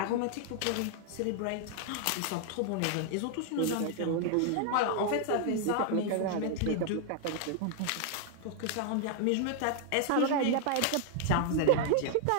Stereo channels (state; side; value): different; both; correlation 0.00